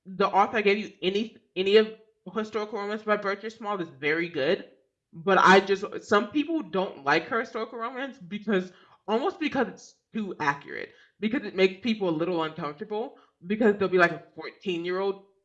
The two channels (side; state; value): both; identical; correlation 1.00